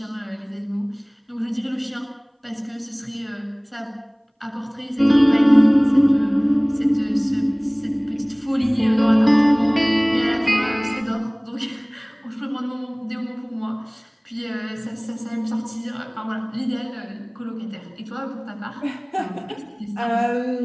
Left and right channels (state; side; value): identical; both; correlation 1.00